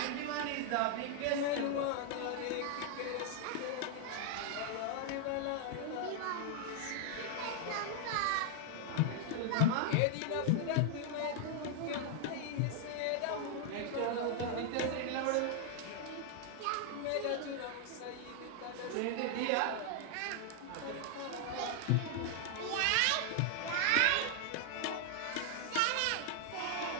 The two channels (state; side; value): different; both; correlation 0.00